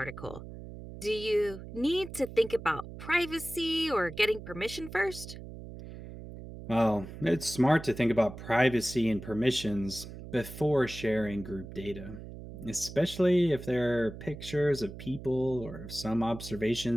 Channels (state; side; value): noise; right; hum, 12 dB below the sound